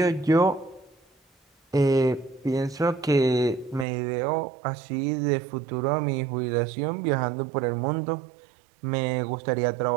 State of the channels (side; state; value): left; drops out; at 3.9 s